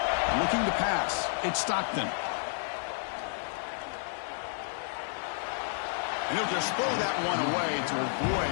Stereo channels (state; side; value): silent; right; 57 dB below the other